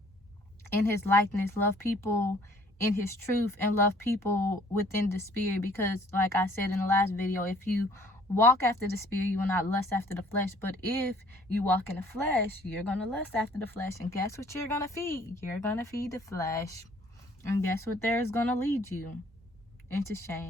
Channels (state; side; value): normal; both; correlation 0.57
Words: in his likeness, love people in his truth, and love people within the spirit. Because like I said in the last video, if you walk after the spirit, you will not lust after the flesh. But if you walk in the flesh, you're going to lust after the flesh. And guess what you're going to feed? You're going to feed the flesh. And guess what there is going to lead you? Into